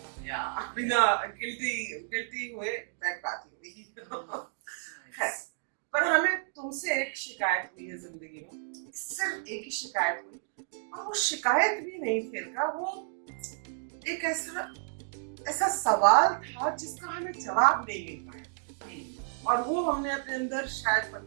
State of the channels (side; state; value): left; silent; digital silence